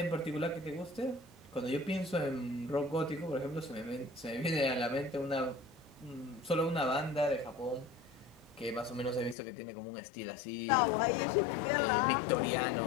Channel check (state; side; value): drops out; right; at 9.3 s